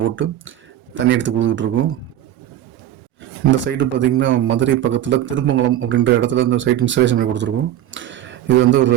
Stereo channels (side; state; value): left; quieter; 12.3 dB